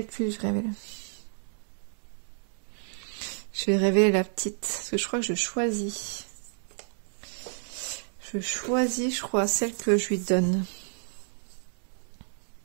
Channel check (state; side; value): silent; left; digital silence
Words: je révèle. Je vais révéler la petite, parce que je crois que je choisis. Je choisis, je crois, celle que je lui donne.